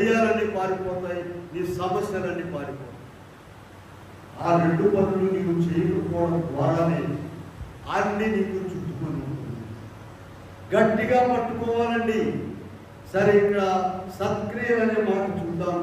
పారిపోతాయి, నీ సమస్యలన్నీ పారిపోతాయి. ఆ 2 పనులు నీవు చేయకపోవడం ద్వారానే అన్ని నీకు చుట్టుకొని ఉంటుంది. గట్టిగా పట్టుకోవాలండి. సరే, ఇక్కడ సత్క్రియలు అనే మాట చూద్దాం.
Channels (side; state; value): both; identical; correlation 1.00